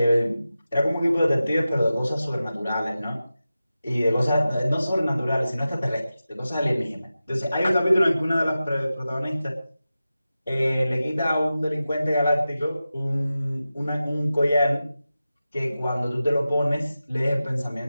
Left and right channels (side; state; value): both; inverted; correlation -0.94